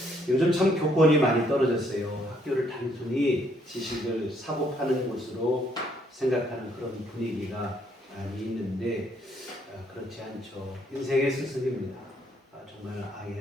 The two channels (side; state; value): both; normal; correlation 0.69